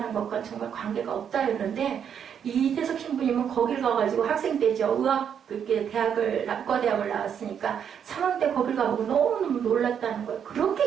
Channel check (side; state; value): left; quieter; 8.1 dB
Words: 것과 정말 관계가 없다였는데 이태석 신부님은 거길 가가지고 학생 때죠. 의과대학을 나왔으니까 3학년 때 거길 가보고 너무너무 놀랐다는 거예요.